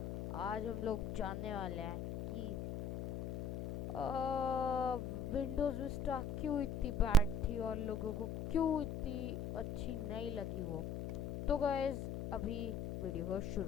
आज हम लोग जानने वाले हैं कि विंडोज़ विस्टा क्यों इतनी बैड थी और लोगों को क्यों इतनी अच्छी नहीं लगी वो। तो गाइस अभी वीडियो को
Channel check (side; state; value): left; noise; hum, 4 dB below the sound